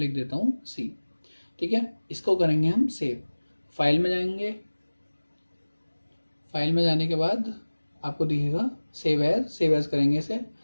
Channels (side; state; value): both; inverted; correlation -1.00